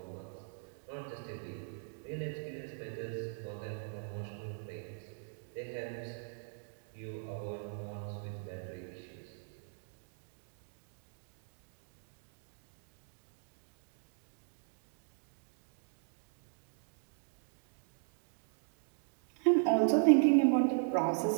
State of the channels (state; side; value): silent; left; digital silence